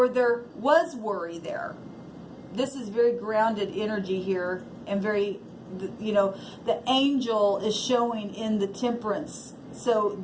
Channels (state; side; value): identical; both; correlation 1.00